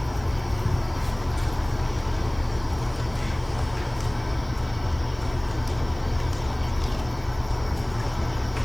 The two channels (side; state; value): right; noise; hiss, 28 dB below the sound